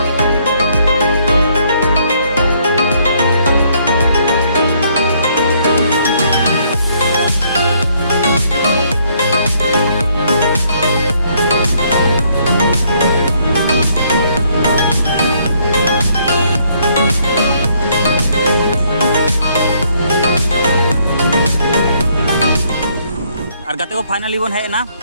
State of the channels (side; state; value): both; inverted; correlation -0.68